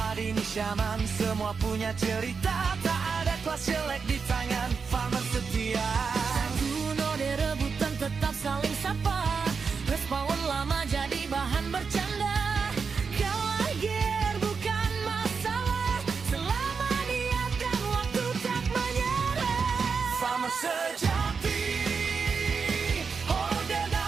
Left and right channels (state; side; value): quieter; left; 5.4 dB